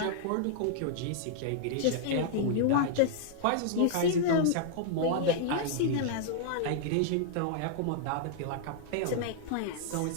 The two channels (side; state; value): both; different; correlation -0.01